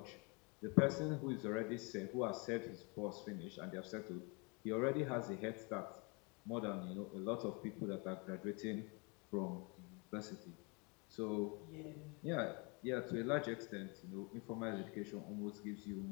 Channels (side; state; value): right; quieter; 31.3 dB